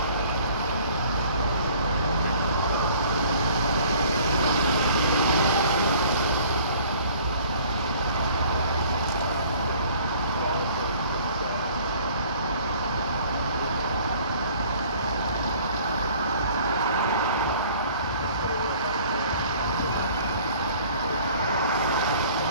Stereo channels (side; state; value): both; inverted; correlation -0.53